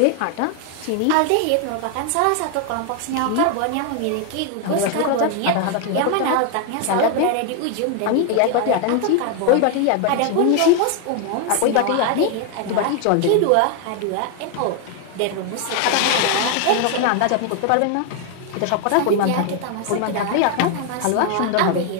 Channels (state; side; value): different; both; correlation 0.00